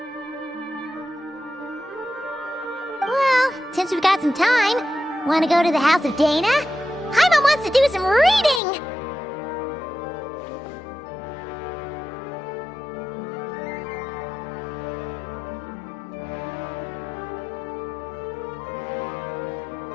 Well, since we've got some time, want to go to the house of Dana? Paimon wants to do some reading!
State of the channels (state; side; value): drops out; right; at 8.6 s